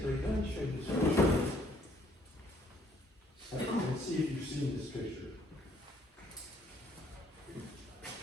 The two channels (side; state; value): both; normal; correlation 0.64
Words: let me show you this picture. And see if you've seen this picture.